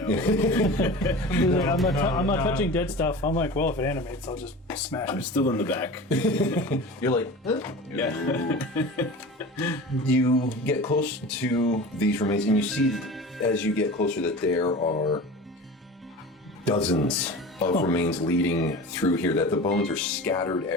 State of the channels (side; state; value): both; normal; correlation 0.35